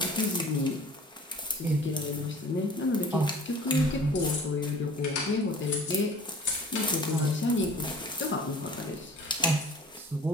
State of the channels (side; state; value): both; normal; correlation 0.47